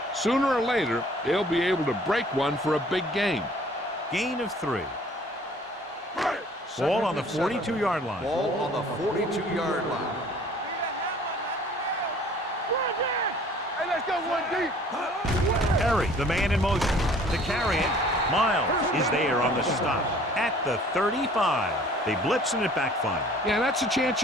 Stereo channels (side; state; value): both; normal; correlation 0.53